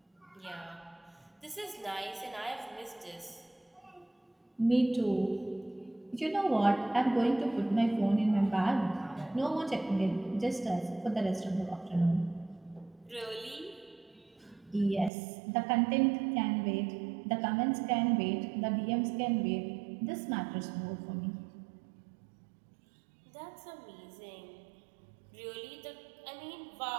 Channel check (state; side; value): drops out; left; at 15.1 s